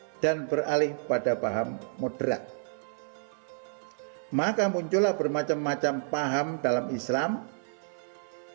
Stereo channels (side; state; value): left; silent; 58 dB below the other